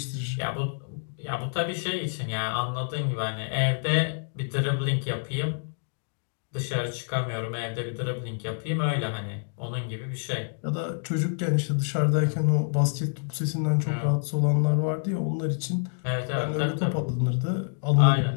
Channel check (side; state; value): right; silent; digital silence